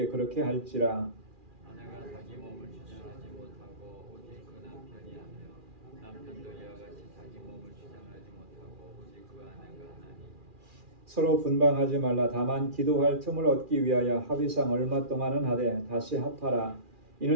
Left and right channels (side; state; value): left; late; 2.4 ms